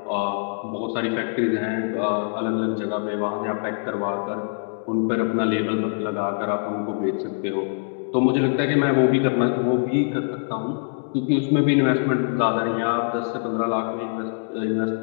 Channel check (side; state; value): right; silent; digital silence